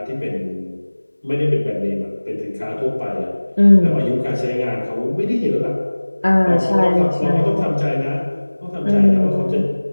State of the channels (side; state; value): both; inverted; correlation -1.00